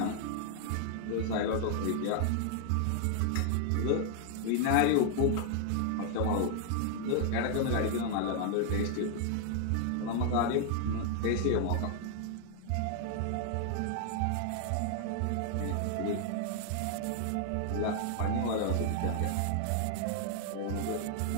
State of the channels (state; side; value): different; both; correlation 0.00